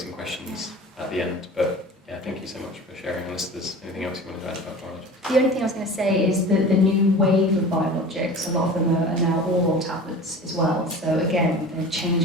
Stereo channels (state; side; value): normal; both; correlation 0.37